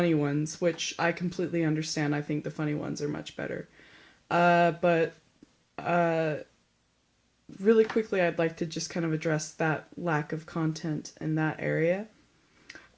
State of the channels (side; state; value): both; identical; correlation 1.00